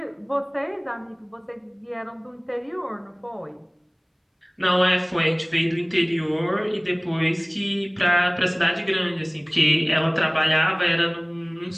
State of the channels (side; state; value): both; identical; correlation 1.00